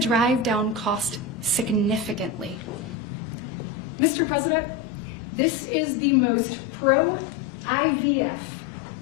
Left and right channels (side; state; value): right; drops out; at 3.0 s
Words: drive down cost significantly. Mr. President, this is the most pro-IVF